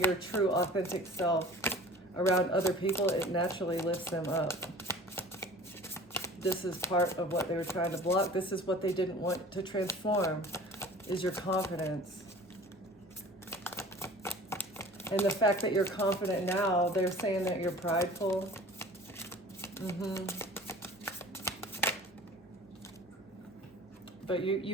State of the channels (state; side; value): normal; both; correlation 0.44